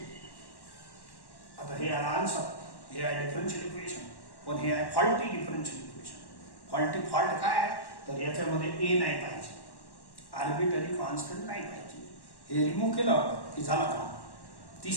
आता हे आला आन्सर हे आहे डिफरन्शियल इक्वेशन पण हे आहे फॉल्टी डिफरन्शियल इक्वेशन फॉल्ट काय आहे तर याच्यामध्ये ए नाही पाहिजे आर्बिट्ररी कॉन्स्टंट नाही पाहिजे हे रिमूव्ह केलं की झाला काम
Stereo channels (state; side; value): late; right; 1.1 ms